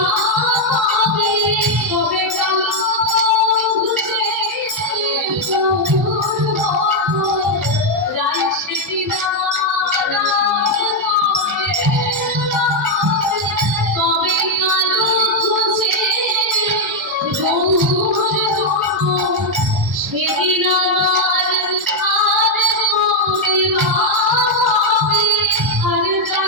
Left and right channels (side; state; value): both; normal; correlation 0.01